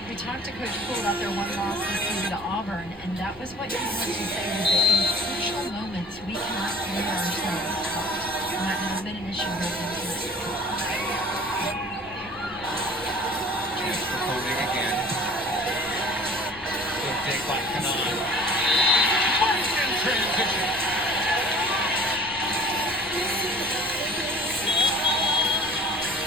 we talked to Coach Poole about their one loss this season to Auburn, and that was what he wanted to say, was that in crucial moments, we cannot leave ourselves out. And that has been an issue with them. Chance for Koenig again. Good dig by Kanan. Martin in transition.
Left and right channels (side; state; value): left; noise; rumble, 22 dB below the sound